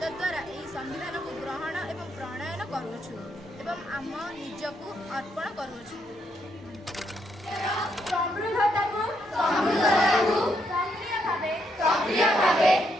द्वारा यह संविधान को ग्रहण एवं प्रणयन करुछु एवं आम निजकू अर्पण करुछु।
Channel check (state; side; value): normal; both; correlation 0.76